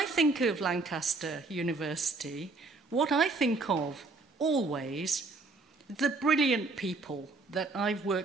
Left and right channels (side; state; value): left; quieter; 3.6 dB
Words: think of Lancaster University, what I think of always, the brilliant people that I've